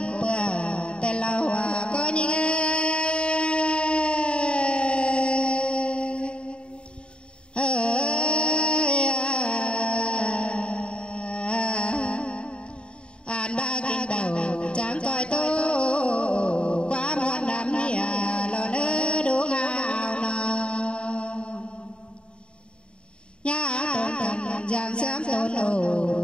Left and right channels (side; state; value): right; late; 0.053 ms